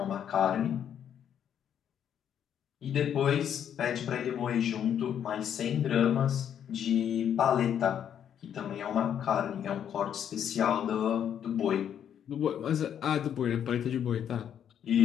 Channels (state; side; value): quieter; right; 9.2 dB